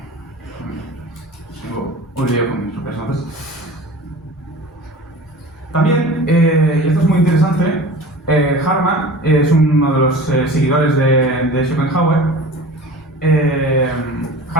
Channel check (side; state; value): both; normal; correlation 0.39